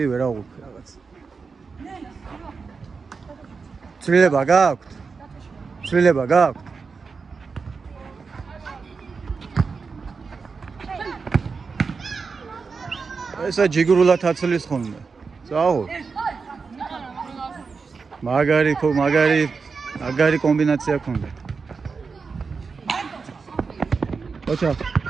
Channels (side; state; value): left; quieter; 4.9 dB